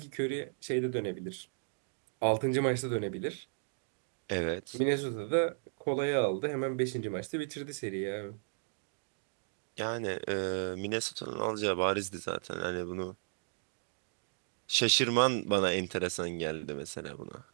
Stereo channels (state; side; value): silent; left; digital silence